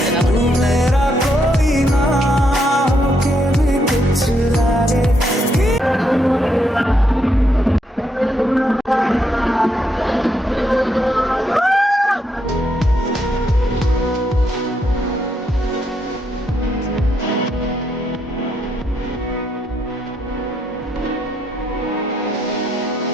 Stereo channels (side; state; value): both; normal; correlation 0.77